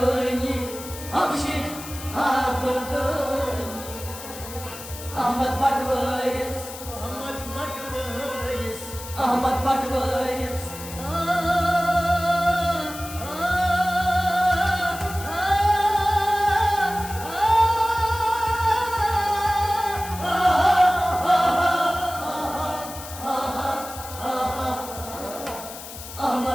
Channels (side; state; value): left; noise; hiss, 13 dB below the sound